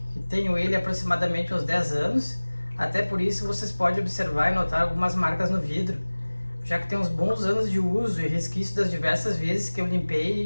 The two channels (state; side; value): inverted; both; correlation -1.00